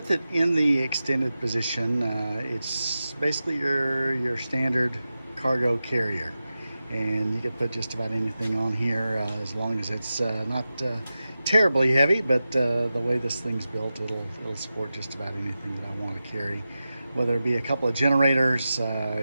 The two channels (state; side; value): inverted; both; correlation -0.93